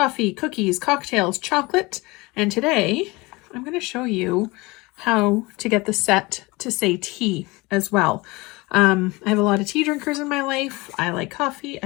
cookies, cocktails, chocolate, and today I'm going to show you how to get the set to say tea as well. I have a lot of tea drinkers in my life. I like coffee,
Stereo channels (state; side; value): quieter; right; 23.1 dB